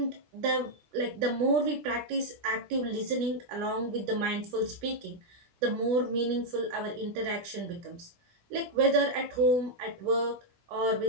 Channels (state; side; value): late; left; 16 ms